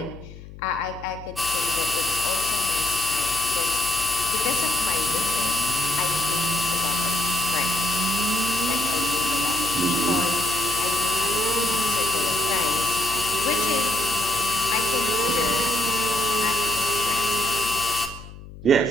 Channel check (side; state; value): left; noise; hum, 16 dB below the sound